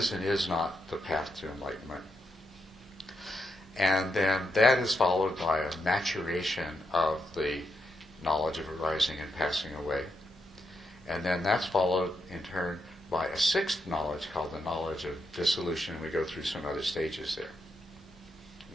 and is not the path to enlightenment. And then that is followed by a maturation of the knowledge of arising and passing away. And then that's followed in turn by a 6th knowledge called the knowledge of dissolution, and we go through some other stages there.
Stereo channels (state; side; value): normal; both; correlation 0.83